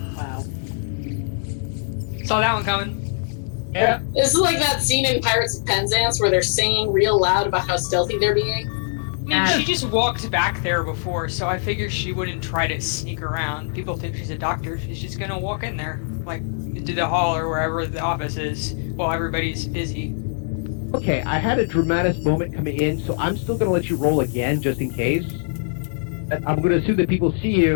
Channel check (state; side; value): silent; right; digital silence